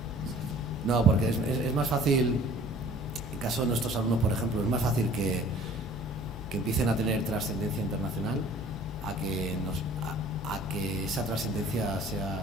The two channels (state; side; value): normal; both; correlation 0.50